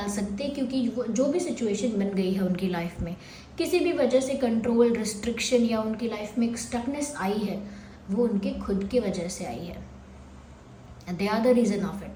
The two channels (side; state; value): both; identical; correlation 1.00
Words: सकते, क्योंकि जो भी सिचुएशन बन गई है उनकी लाइफ में, किसी भी वजह से कंट्रोल, रिस्ट्रिक्शन या उनकी लाइफ में एक स्टकनेस आई है, वो उनके खुद की वजह से आई है। They are the reason of